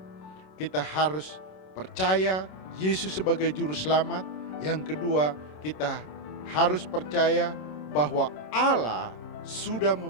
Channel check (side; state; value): right; late; 27 ms